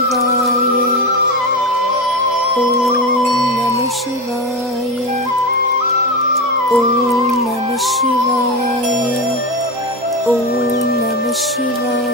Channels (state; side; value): normal; both; correlation 0.18